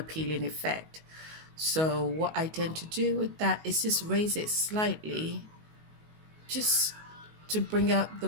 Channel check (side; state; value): left; late; 19 ms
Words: effect. So what I tend to do with that is just raise it slightly, just to bring out the